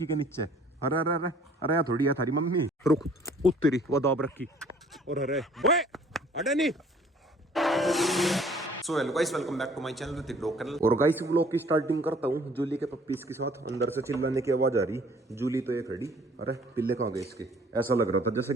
के नीचे। अरे अरे अरे अरे यार थोड़ी है थारी मम्मी, रुक उत्तरी वो दाब रखी। और अरे ओए अरे नहीं। So hello guys, welcome back to my channel Hrithik dog channel. और गाइस व्लॉग की स्टार्टिंग करता हूँ जूली के पप्पीज के साथ। अंदर से चिल्लाने की आवाज आ रही, जूली तो ये खड़ी। अरे पिल्ले कहाँ गए इसके? ऐसा लग रहा था जैसे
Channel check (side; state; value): both; normal; correlation 0.56